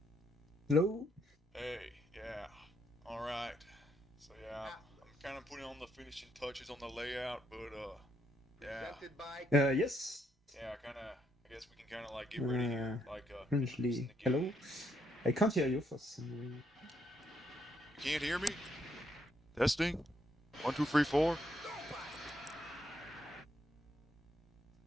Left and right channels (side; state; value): both; normal; correlation 0.75